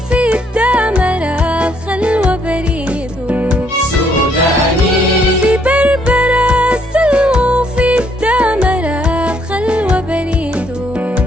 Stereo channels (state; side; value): normal; both; correlation 0.69